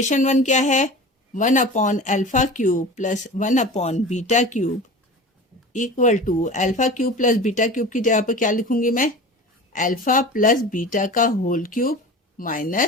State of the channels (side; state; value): both; normal; correlation 0.36